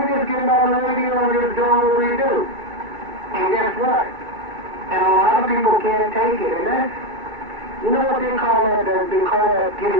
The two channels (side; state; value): left; late; 2.3 ms